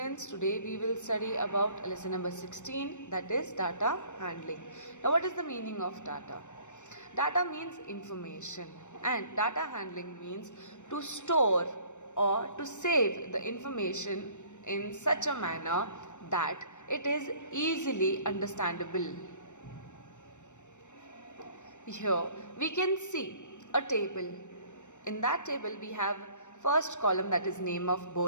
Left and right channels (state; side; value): late; right; 0.84 ms